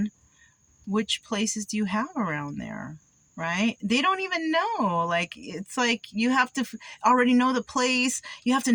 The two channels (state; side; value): identical; both; correlation 1.00